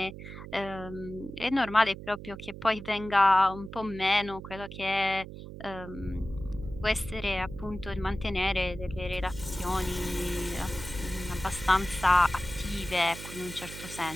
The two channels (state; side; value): noise; right; hum, 12 dB below the sound